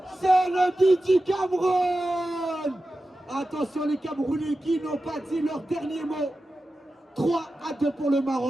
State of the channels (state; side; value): normal; both; correlation 0.93